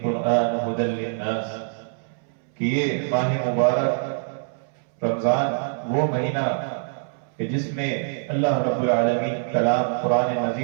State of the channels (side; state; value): left; silent; 62 dB below the other